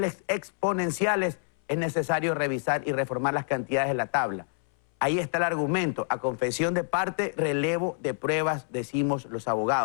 exponenciales, es necesario revisar y reformar las cantidades de la tabla. Ahí está el argumento. A confesión de parte, relevo de pruebas, decimos los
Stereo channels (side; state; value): right; silent; 60 dB below the other